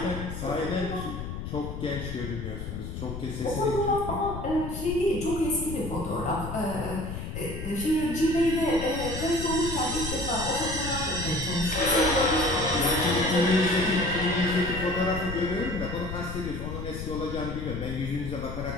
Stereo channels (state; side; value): noise; left; rumble, 7 dB below the sound